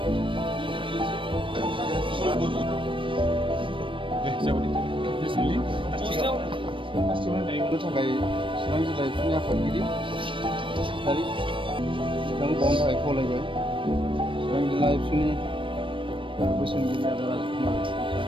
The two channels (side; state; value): left; late; 0.25 ms